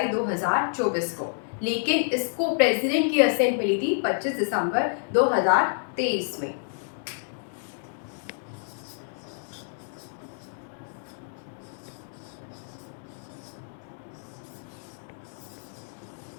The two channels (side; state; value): right; silent; digital silence